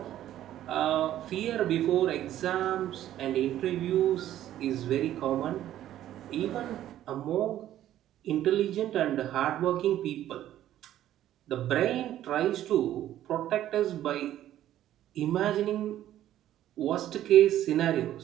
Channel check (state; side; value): quieter; left; 12.5 dB